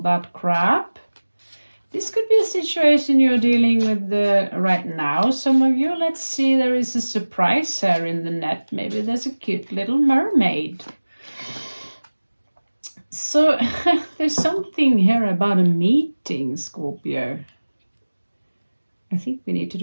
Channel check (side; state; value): both; inverted; correlation -1.00